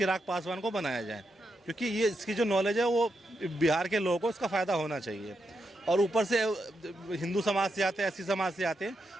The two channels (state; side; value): normal; both; correlation 0.84